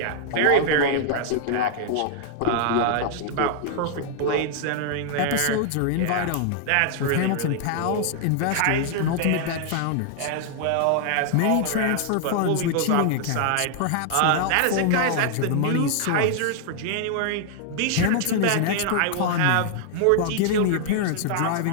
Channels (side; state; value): both; different; correlation 0.00